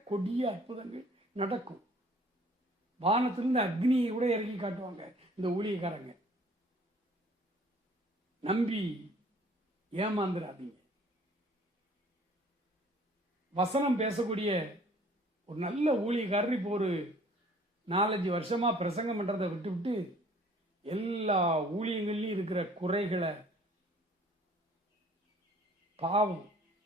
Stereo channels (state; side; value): normal; both; correlation 0.55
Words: கொடிய அற்புதங்கள் நடக்கும். வானத்திலிருந்து அக்னியை கூட இறக்கி காட்டுவாங்க இந்த ஊழியக்காரங்க. நம்பி ஏமாந்துடாதீங்க. வசனம் பேசக்கூடிய ஒரு நல்ல ஊழியக்காரர் இப்போ ஒரு 4-5 வருஷமா பிரசங்கம் பண்றதை விட்டு எல்லா ஊழியங்கள்லையும் இருக்கிற குறைகளை பாவம்